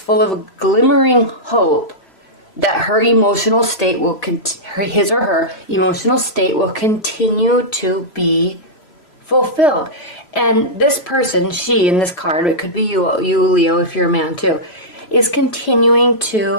of glimmering hope that her emotional state will, his or her emotional state will continue to be fulfilled. And this person, she in this card, it could be you Leo, if you're a man too, is continuing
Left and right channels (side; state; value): right; late; 3.0 ms